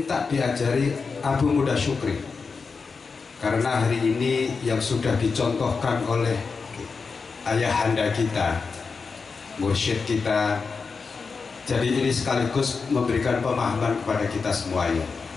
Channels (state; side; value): quieter; right; 4.9 dB